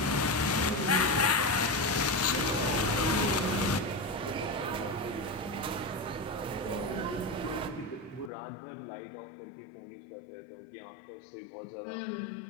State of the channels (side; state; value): right; drops out; at 8.3 s